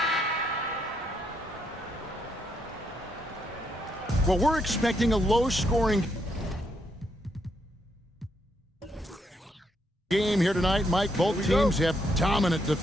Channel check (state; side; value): normal; both; correlation 0.76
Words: Well, we're expecting a low-scoring game here tonight, Mike. Both teams have dominant